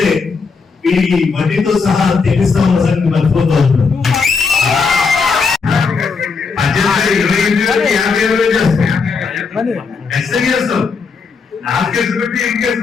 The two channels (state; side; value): quieter; right; 5.0 dB